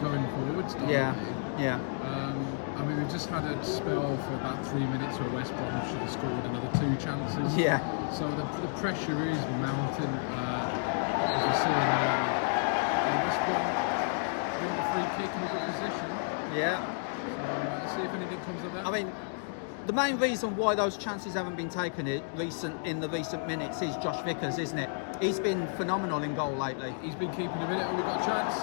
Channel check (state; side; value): silent; right; digital silence